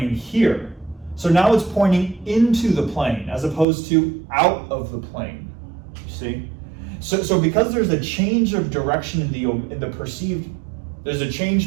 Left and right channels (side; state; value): left; drops out; at 3.7 s